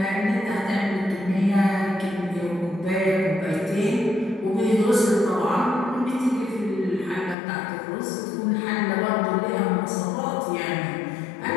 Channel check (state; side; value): drops out; right; at 7.4 s